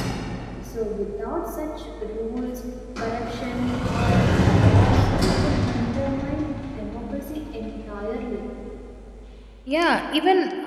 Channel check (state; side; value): identical; both; correlation 1.00